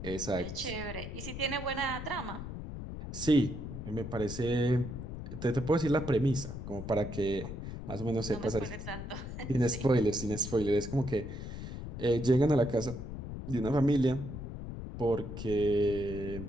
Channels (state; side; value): noise; left; rumble, 8 dB below the sound